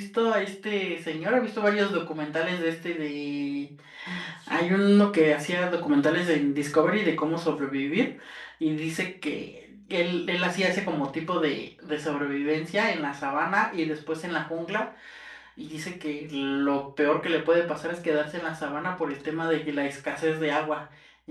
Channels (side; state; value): both; identical; correlation 1.00